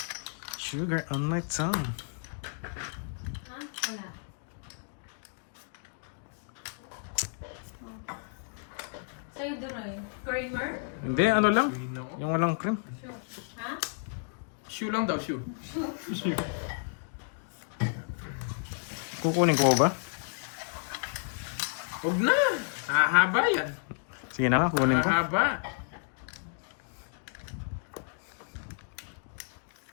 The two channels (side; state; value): right; silent; digital silence